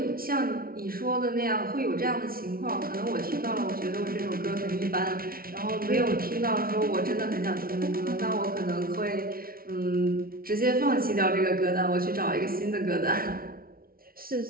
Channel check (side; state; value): left; late; 0.43 ms